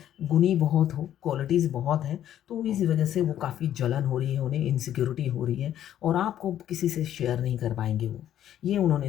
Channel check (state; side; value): quieter; right; 11.2 dB